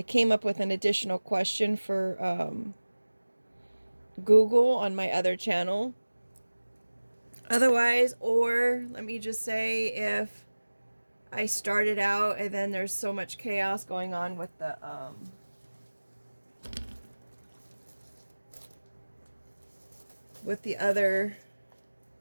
came up with an additional question for Google on my other channel. Otherwise, or let me just say, if I started out and then there's so much chaos going on with the other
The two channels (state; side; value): inverted; both; correlation -1.00